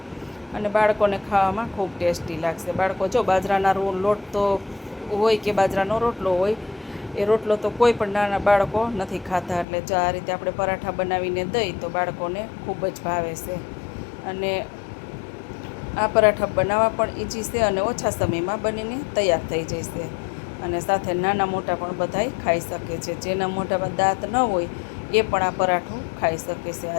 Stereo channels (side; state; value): right; drops out; at 9.7 s